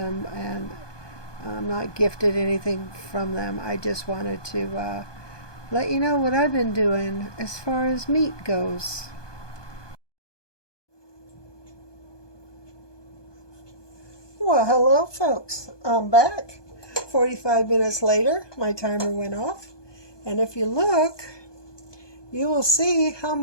and I'm not gifted anything from them. I just wanted to let you know what I've been doing as far as meat goes. Well, hello folks. I'm back. 45 minutes later, my timer went off. And if you look, you will see how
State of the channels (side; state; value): right; late; 1.2 ms